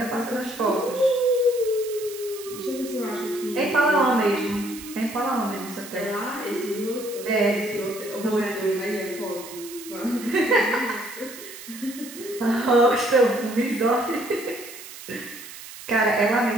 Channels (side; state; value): right; noise; hiss, 14 dB below the sound